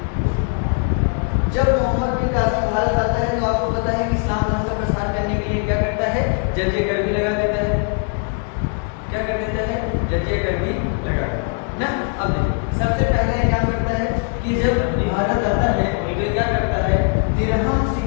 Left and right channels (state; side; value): quieter; right; 38.7 dB